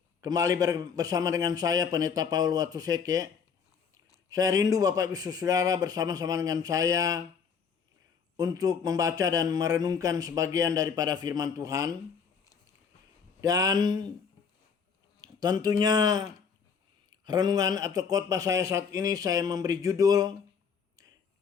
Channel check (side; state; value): right; quieter; 6.4 dB